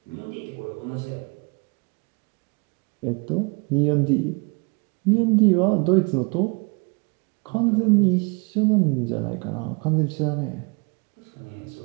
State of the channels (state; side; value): quieter; left; 31.5 dB